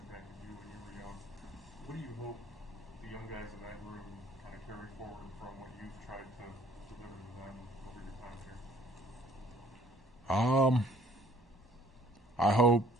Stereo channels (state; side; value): normal; both; correlation 0.57